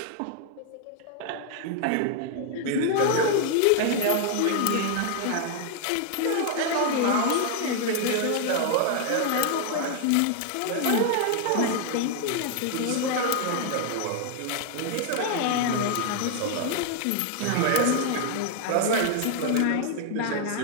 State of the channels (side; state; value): both; different; correlation 0.00